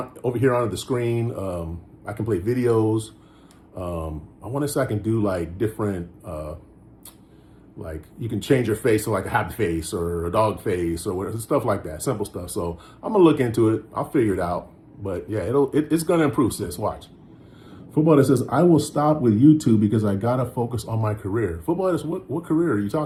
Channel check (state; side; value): identical; both; correlation 1.00